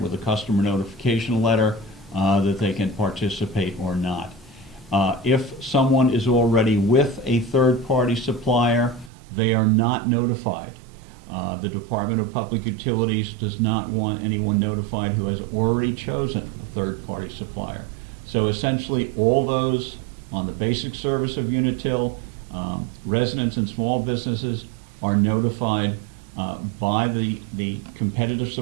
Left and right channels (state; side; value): drops out; left; at 9.1 s